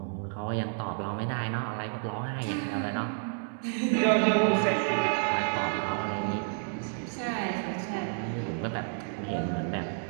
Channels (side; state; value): left; silent; 58 dB below the other